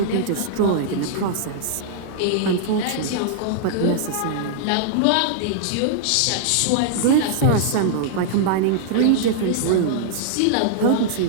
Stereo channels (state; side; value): different; both; correlation -0.01